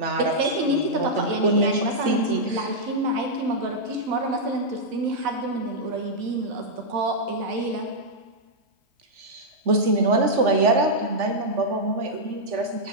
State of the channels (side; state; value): left; late; 3.4 ms